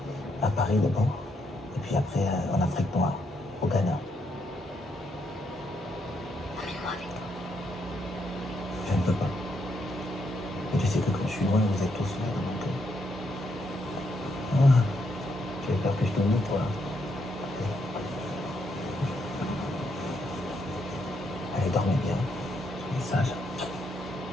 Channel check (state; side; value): normal; both; correlation 0.77